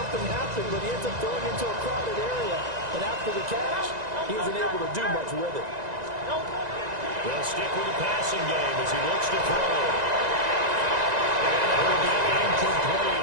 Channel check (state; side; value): late; left; 1.9 ms